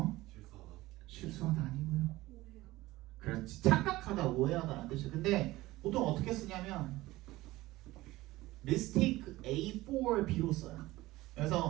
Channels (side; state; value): left; quieter; 18.3 dB